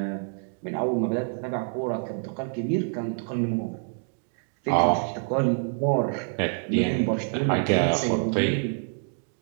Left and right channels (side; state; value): left; silent; 56 dB below the other